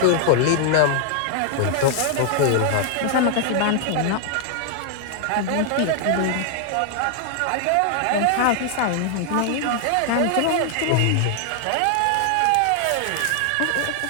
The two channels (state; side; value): different; both; correlation 0.00